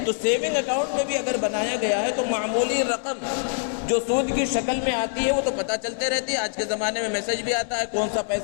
تو سیونگ اکاؤنٹ میں بھی اگر بنایا گیا ہے تو معمولی رقم جو سود کی شکل میں آتی ہے وہ تو پتہ چلتے رہتی ہے. آج کے زمانے میں میسج بھی آتا ہے کون سا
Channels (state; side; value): silent; right; 62 dB below the other